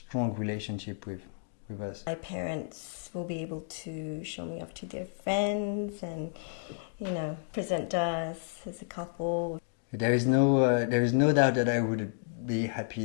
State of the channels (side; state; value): right; silent; digital silence